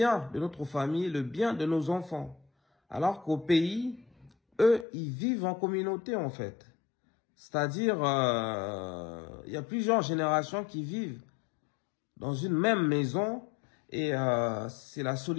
de notre famille, le bien de nos enfants. Alors qu'au pays, eux, ils vivent en communauté en fait. C'est-à-dire, il y a plusieurs générations qui vivent dans une même maison et c'est la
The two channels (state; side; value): drops out; right; at 4.9 s